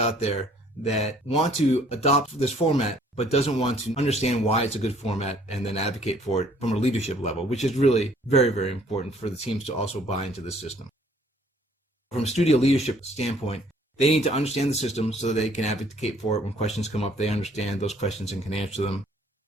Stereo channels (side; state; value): both; normal; correlation 0.60